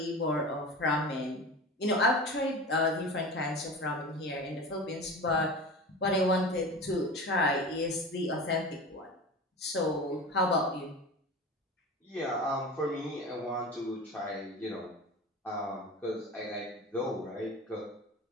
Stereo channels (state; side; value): normal; both; correlation 0.32